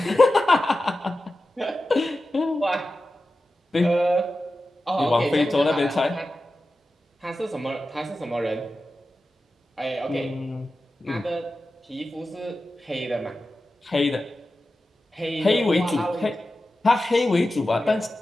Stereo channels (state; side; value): normal; both; correlation 0.93